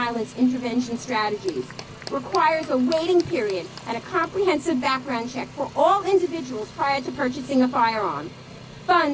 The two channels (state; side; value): identical; both; correlation 1.00